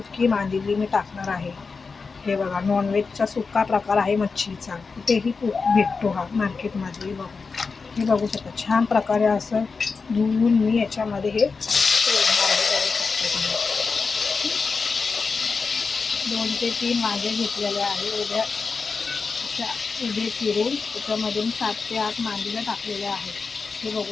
मांदेली मी टाकणार आहे. हे बघा, नॉनव्हेजचा सुका प्रकार आहे मच्छीचा, कुठेही भेटतो हा मार्केटमध्ये. बघा, हे बघू शकता छान प्रकारे असं धुवून मी याच्यामध्ये हे सोडणार आहे. बघू शकता तुम्ही, 2 ते 3 वांगे घेतलेले आहे उभ्या उभे चिरून. त्याच्यामध्ये मी 7 ते 8 मांदेल्या टाकलेल्या आहेत. हे बघू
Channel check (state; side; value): quieter; right; 4.7 dB